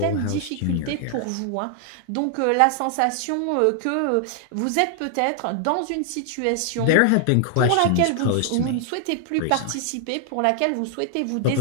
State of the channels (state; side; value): different; both; correlation 0.00